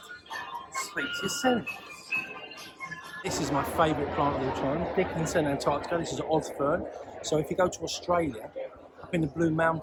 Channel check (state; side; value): identical; both; correlation 1.00